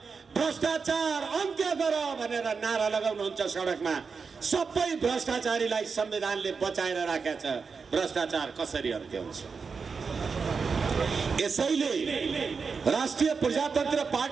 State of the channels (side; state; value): left; quieter; 5.2 dB